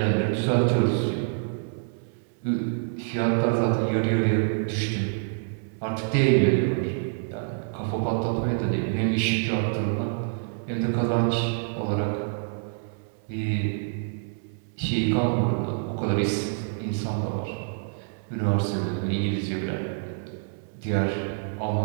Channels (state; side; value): silent; left; 60 dB below the other